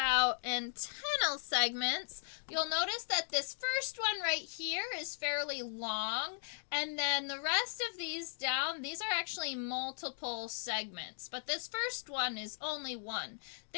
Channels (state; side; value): silent; right; digital silence